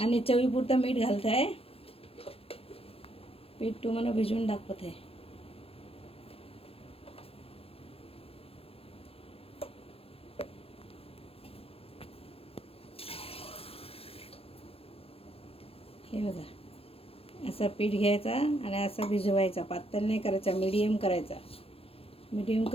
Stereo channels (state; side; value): late; right; 0.28 ms